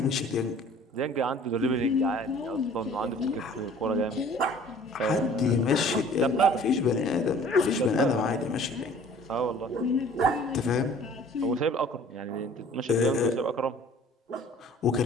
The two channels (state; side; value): normal; both; correlation 0.50